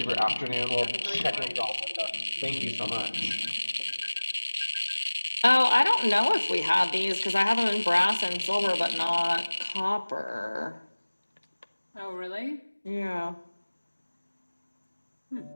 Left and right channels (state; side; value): inverted; both; correlation -1.00